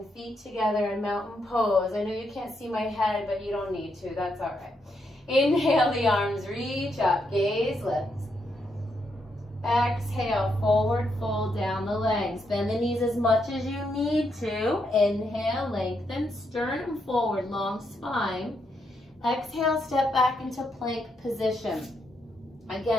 feet together in mountain pose. I know you can't see my head, but you don't need to. That's all right. Inhale, the arms reach up, gaze lifts. Exhale, forward fold down the legs. Bend the knees as much as you need to. Inhale, lengthen, sternum forward, long spine. Exhale, step back into plank position.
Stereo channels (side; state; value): both; normal; correlation 0.79